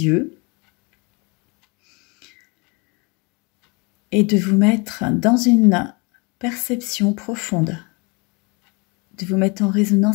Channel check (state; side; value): quieter; right; 29.9 dB